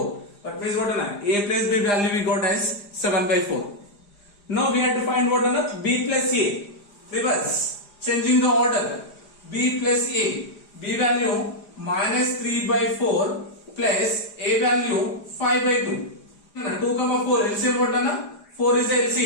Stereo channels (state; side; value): late; right; 4.9 ms